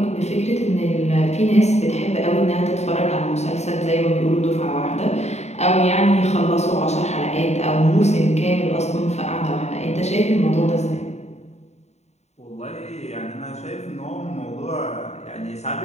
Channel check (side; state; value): right; late; 0.32 ms